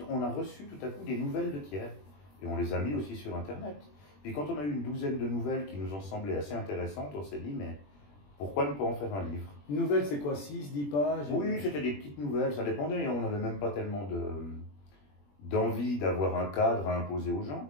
on a reçu tout à coup des nouvelles de tiers. Et on les a mis aussi sur Internet. Puis quand on a eu une douzaine de nouvelles qui nous ont semblé assez intéressantes, on s'est dit, mais pourquoi ne pas en faire un livre? Une nouvelle, c'est quoi, 6, 10 pages? Oui, c'était des petites nouvelles, ça dépendait. On n'avait même pas tellement d'envie d'avoir un cadre à imposer aux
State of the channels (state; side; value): late; right; 21 ms